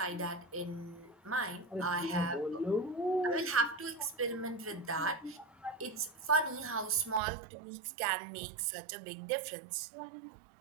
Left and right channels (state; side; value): drops out; left; at 7.2 s